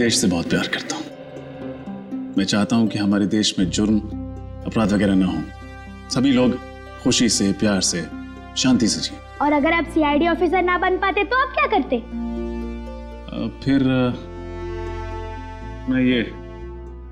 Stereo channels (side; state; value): both; identical; correlation 1.00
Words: से बहुत प्यार करता हूँ। मैं चाहता हूँ कि हमारे देश में जुर्म, अपराध वगैरह ना हो, सभी लोग खुशी से, प्यार से, शांति से जिए। और अगर आप सीआईडी ऑफिसर ना बन पाते तो आप क्या करते? फिर मैं ये